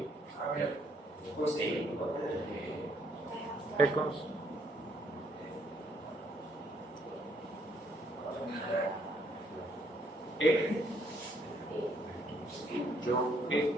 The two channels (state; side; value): normal; both; correlation 0.69